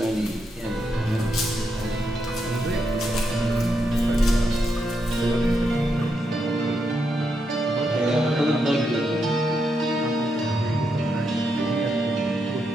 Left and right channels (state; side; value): normal; both; correlation 0.82